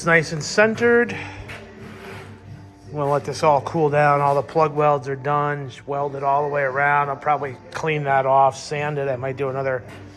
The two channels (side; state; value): both; identical; correlation 1.00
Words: nice and centered. I'm gonna let this all cool down. All the plug welds are done. Just weld it all the way around. I'll probably clean that off, sand it. I might do another